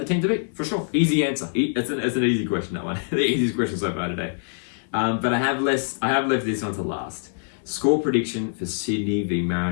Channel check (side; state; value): right; silent; digital silence